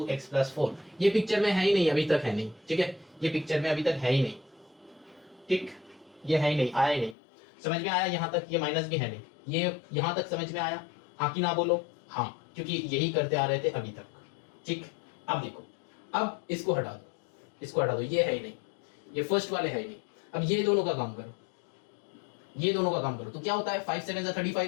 x plus 4। ये पिक्चर में है ही नहीं, अभी तक है नहीं। ठीक है, ये पिक्चर में अभी तक है ही नहीं, ठीक, ये है ही नहीं, आया ही नहीं। समझ में आया यहाँ तक? ये माइनस भी है नहीं, ये यहाँ तक समझ में आया, हाँ कि ना बोलो? हाँ, क्योंकि यही करते आ रहे थे अभी तक। ठीक, अब देखो, अब इसको हटा दो, इसको हटा दो, ये है ही नहीं, ये फर्स्ट वाले है ही नहीं। अब ये दोनों का काम करो, ये दोनों का काम करो, तो क्या होता है, 5 7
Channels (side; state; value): right; drops out; at 7.2 s